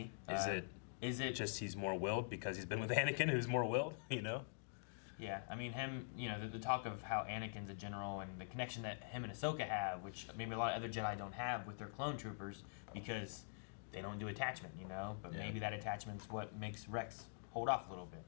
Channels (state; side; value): silent; right; digital silence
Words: Is it just he's more willed because he's been with Anakin, who's more willed, you know? Yeah, I mean him. You know, the talk of how Anakin's a general and the connection that him and Ahsoka have, which maybe a lot of other Jedi don't have with their clone troopers because they don't do attachment. You know, but Yeah. maybe that attachment's what makes Rex hold off a little bit.